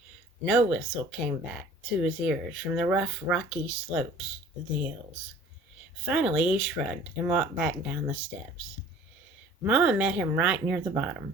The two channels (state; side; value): normal; both; correlation 0.49